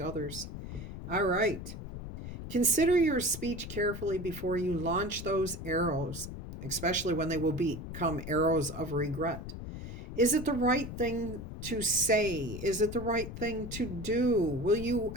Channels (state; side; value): noise; left; rumble, 9 dB below the sound